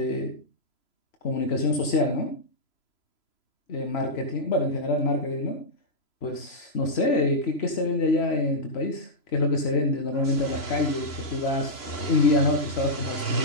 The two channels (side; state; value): right; late; 3.0 ms